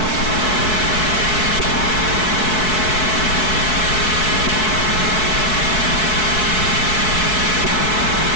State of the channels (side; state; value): right; late; 4.6 ms